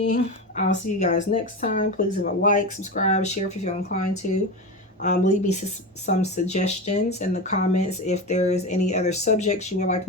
I'll see you guys next time. Please leave a like, subscribe, share if you feel inclined to. Leave me some suggestions in the comments. If there is any other subjects you would like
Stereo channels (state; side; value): normal; both; correlation 0.22